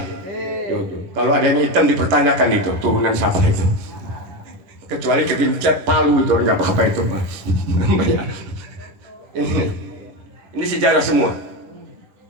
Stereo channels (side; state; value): left; late; 11 ms